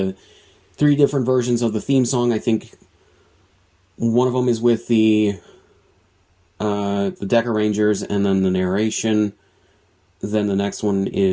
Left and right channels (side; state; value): both; identical; correlation 1.00